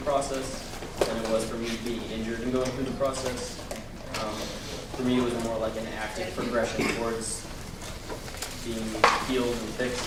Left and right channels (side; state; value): both; identical; correlation 1.00